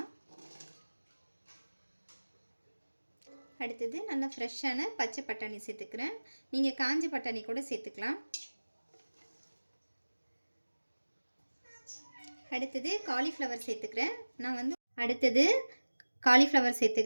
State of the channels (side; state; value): both; inverted; correlation -1.00